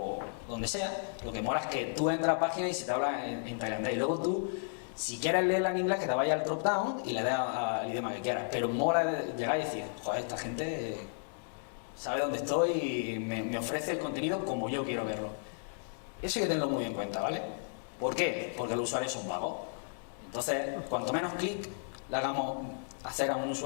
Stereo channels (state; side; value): silent; right; digital silence